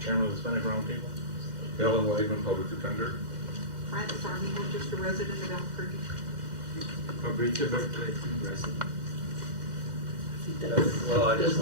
chairman of the Hispanic Roundtable. Helen Wakeman, public defender. Francis Armijo, just a resident of Albuquerque. Fabrizio Berkeley, resident. Well, I Those just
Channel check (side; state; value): left; late; 2.1 ms